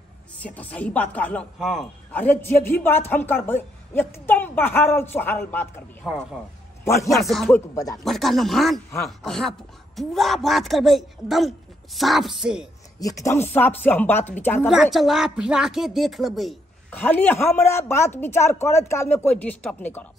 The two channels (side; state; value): both; normal; correlation 0.74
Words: से तो सही बात कहलौ। हाँ अरे जे भी बात हम करबे एकदम बहारल सुहारल बात करबे। हाँ बढ़िया से ठोक बजा बड़का नमान हाँ अहाँ पूरा बात करबे एकदम साफ से हम बात विचार पूरा करबे चला फिरा के देख लेबे खाली हमरा बात विचार करत काल में कोई डिस्टर्ब नहीं करब